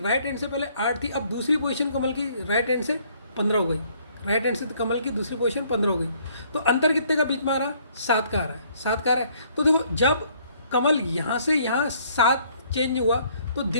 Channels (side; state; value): both; inverted; correlation -0.63